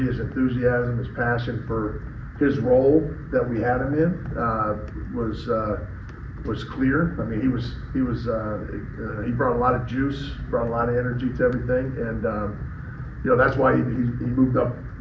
his enthusiasm, his passion for his role that we had him in was clear. He brought a lot of juice, brought a lot of energy to everything, and that's why he moved up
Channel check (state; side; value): identical; both; correlation 1.00